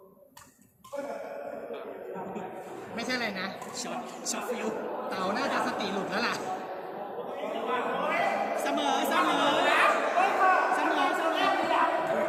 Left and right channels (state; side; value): identical; both; correlation 1.00